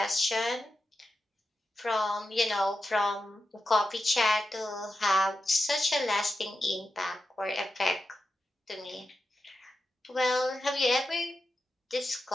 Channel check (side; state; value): both; normal; correlation 0.90